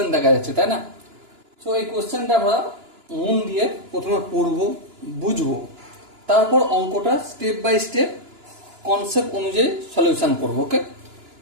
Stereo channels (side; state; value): left; late; 2.9 ms